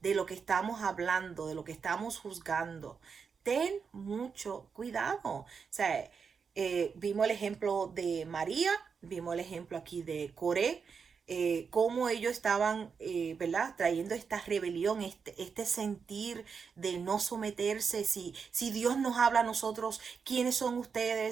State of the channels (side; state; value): left; quieter; 5.9 dB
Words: lo que estamos hablando, de lo que estamos juzgando. Ten mucho cuidado. O sea, vimos el ejemplo de María, vimos el ejemplo aquí de Coré, cómo ellos estaban, ¿verdad? Trayendo esta rebelión, este sentir de no someterse. Si Dios nos habla a nosotros, ¿quiénes son